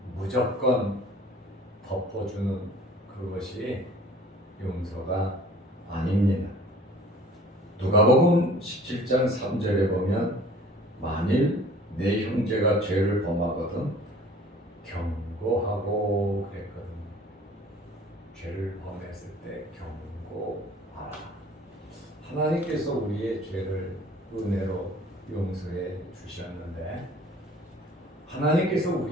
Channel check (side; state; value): both; normal; correlation 0.50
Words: 무조건 덮어주는 그것이 용서가 아닙니다. 누가복음 17장 3절에 보면 만일 내 형제가 죄를 범하거든 경고하고 그랬거든요. 죄를 범했을 때 경고하라. 하나님께서 우리의 죄를 은혜로 용서해 주셨는데, 하나님께서